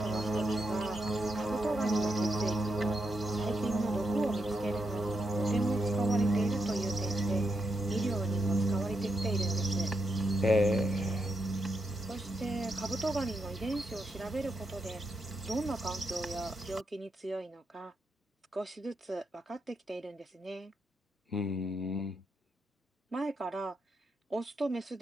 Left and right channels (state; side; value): normal; both; correlation 0.82